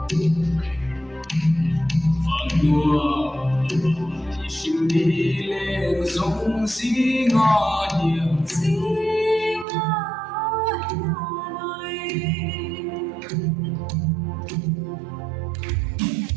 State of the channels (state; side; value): drops out; left; at 9.7 s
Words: phật đua xin đi lên sông xí ngõ hiểm xí